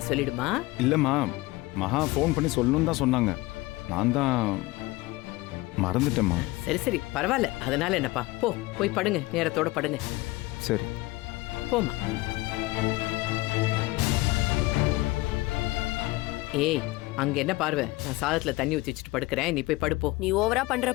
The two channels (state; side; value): quieter; right; 20.8 dB